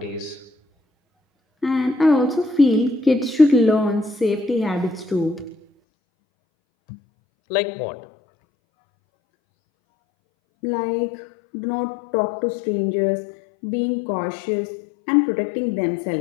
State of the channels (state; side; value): drops out; right; at 5.7 s